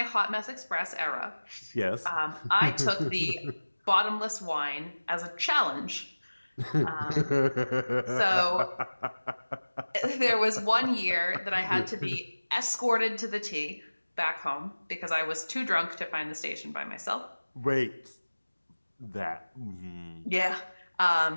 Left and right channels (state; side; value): inverted; both; correlation -1.00